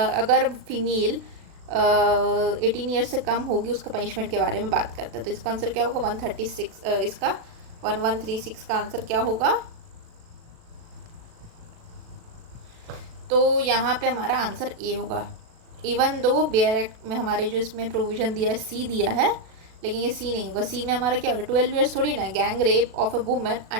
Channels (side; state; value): left; late; 36 ms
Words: फीमेल 18 ईयर्स से कम होगी उसका पनिशमेंट के बारे में बात करता है। तो इसका आंसर क्या होगा, 136, इसका 1136 का आंसर क्या होगा। तो यहाँ पे हमारा आंसर A होगा। इवन दो बेयर एक्ट में हमारे जो इसमें प्रोविज़न दिया है C दिया है, लेकिन ये C नहीं होगा। C में हमारा क्या होगा, 12 ईयर्स थोड़ी ना। Gang rape of a women